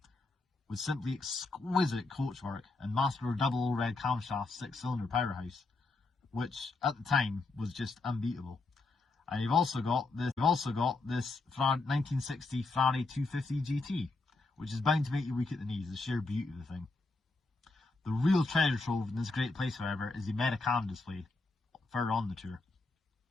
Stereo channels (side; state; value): right; quieter; 3.5 dB